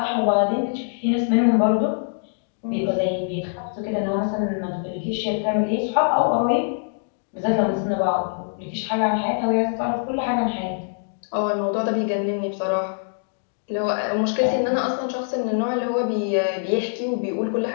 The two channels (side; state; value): right; silent; digital silence